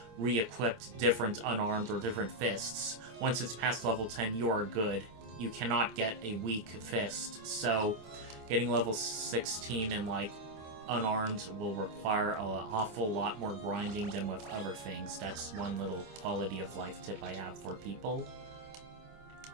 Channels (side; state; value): left; late; 26 ms